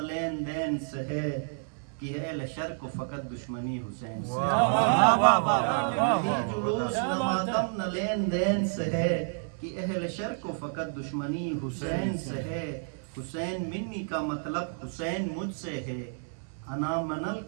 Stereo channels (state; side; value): silent; left; digital silence